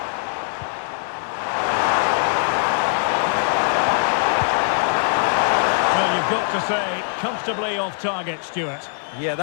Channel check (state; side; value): silent; right; digital silence